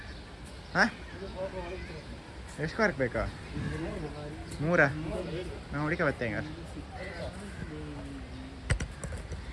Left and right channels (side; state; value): both; identical; correlation 1.00